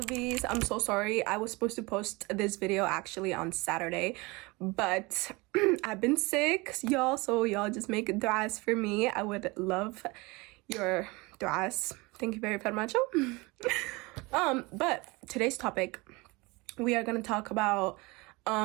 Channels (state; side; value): quieter; left; 24.7 dB